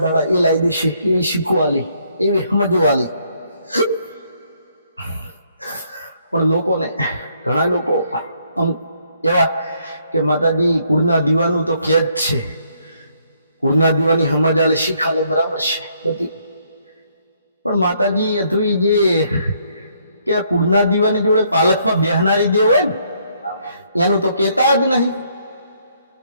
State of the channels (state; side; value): inverted; both; correlation -0.70